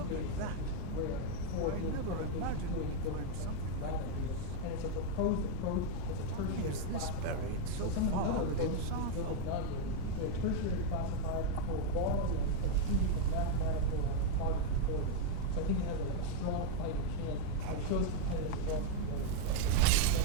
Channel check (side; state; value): both; different; correlation 0.00